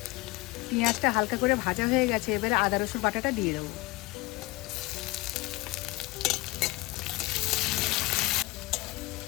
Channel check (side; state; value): right; quieter; 21.9 dB